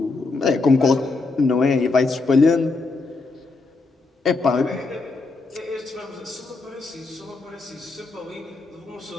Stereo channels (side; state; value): right; quieter; 3.7 dB